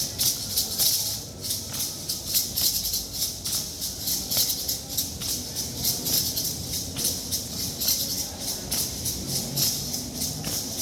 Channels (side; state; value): both; identical; correlation 1.00